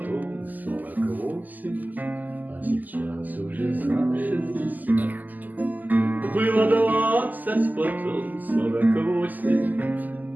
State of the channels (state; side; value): late; left; 0.083 ms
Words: 48, а сейчас уже за 60. Было 20, потом 48,